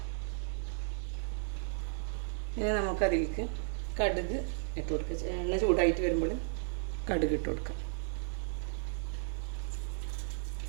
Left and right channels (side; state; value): left; silent; digital silence